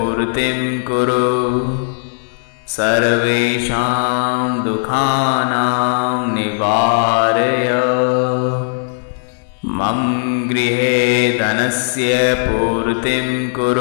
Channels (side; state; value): right; silent; digital silence